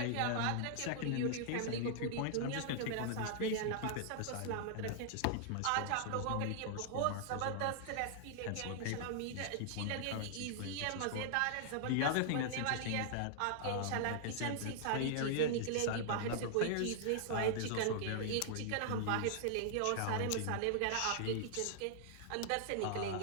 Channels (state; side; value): different; both; correlation -0.01